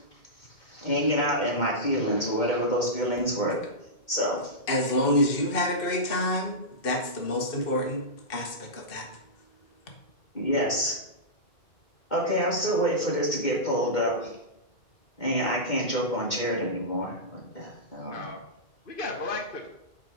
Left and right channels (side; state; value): right; late; 2.2 ms